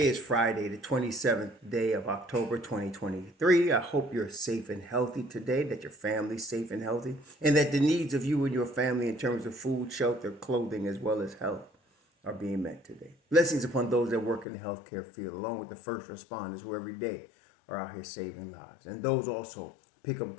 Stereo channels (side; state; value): right; drops out; at 14.5 s